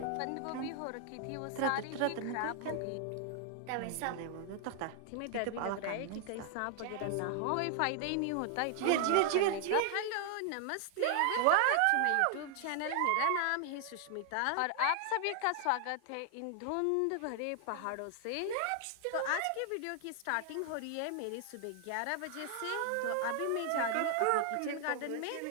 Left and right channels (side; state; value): both; different; correlation 0.00